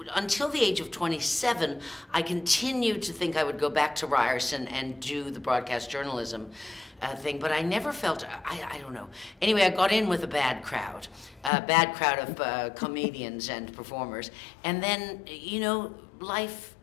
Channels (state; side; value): drops out; right; at 11.5 s